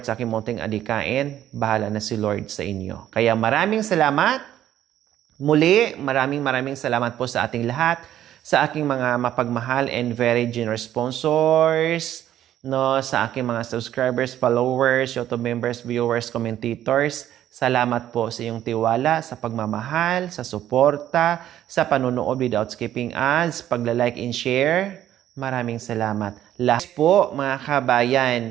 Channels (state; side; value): quieter; left; 11.9 dB